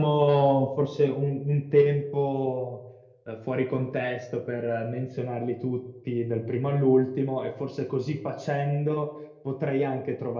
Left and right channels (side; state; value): both; identical; correlation 1.00